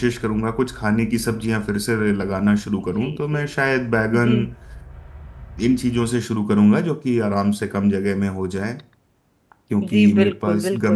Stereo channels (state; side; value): identical; both; correlation 1.00